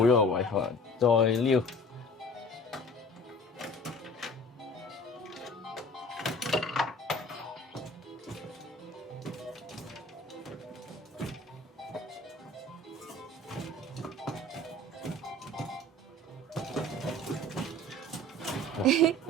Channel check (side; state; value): both; normal; correlation 0.45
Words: 咗個位，可能再撩。